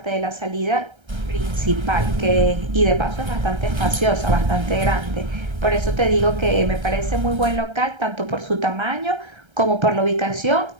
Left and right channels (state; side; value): late; left; 1.3 ms